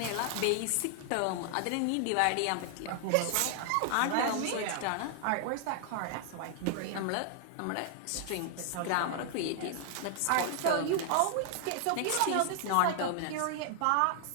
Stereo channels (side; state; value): both; different; correlation 0.00